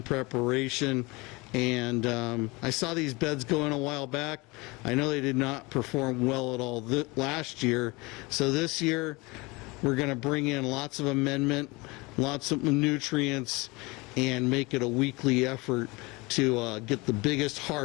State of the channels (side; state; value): right; quieter; 24.9 dB